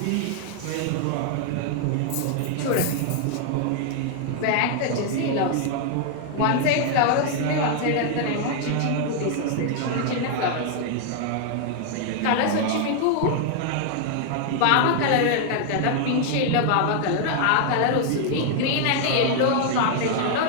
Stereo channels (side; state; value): both; different; correlation 0.00